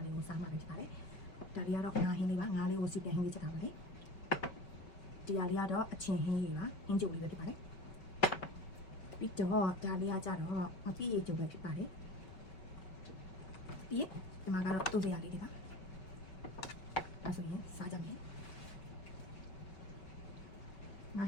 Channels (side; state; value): right; late; 5.3 ms